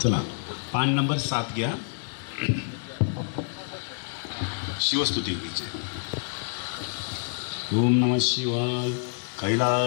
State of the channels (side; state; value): right; silent; digital silence